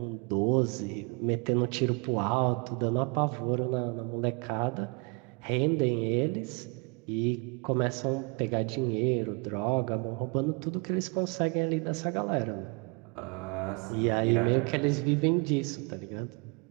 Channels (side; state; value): left; quieter; 31.2 dB